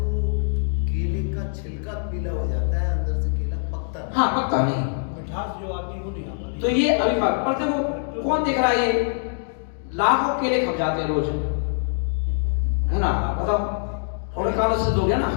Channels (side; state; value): right; silent; digital silence